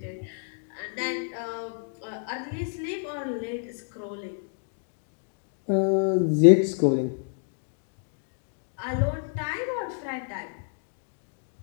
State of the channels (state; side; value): silent; right; 59 dB below the other